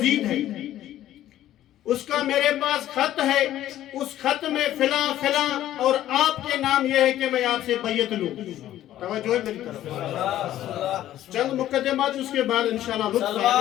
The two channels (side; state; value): right; quieter; 13.0 dB